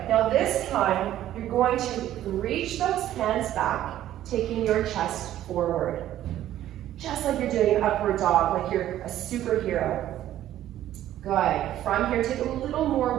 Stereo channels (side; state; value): left; quieter; 12.6 dB